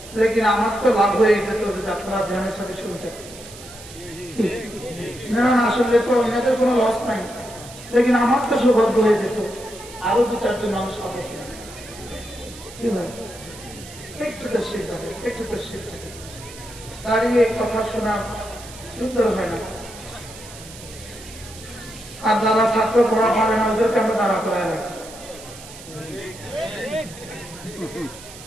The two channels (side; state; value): right; noise; hiss, 16 dB below the sound